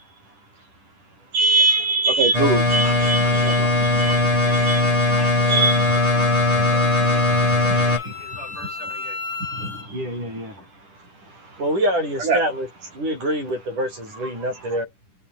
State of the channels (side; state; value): left; late; 10 ms